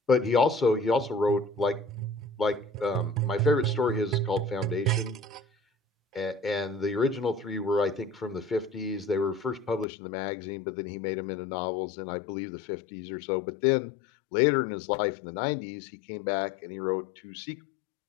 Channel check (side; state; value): right; drops out; at 9.9 s